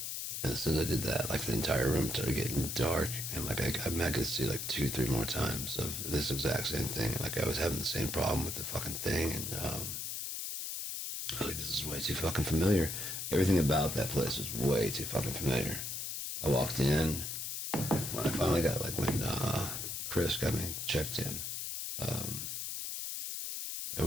And as soon as I did that, like the entire room started getting dark, and like I could see like 2-3 more times of this exact same thing. Like I was having the same problem with the fucking thing, and I was like, this is way too fucking familiar. Everything about that place was way too fucking familiar. I walked in when I finally got like when Chris got me checked in. I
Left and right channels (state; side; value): noise; left; hiss, 4 dB below the sound